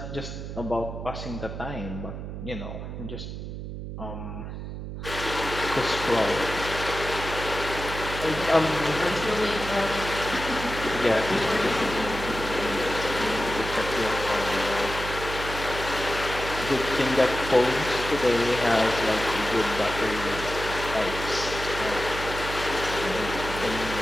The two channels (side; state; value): right; noise; hum, 8 dB below the sound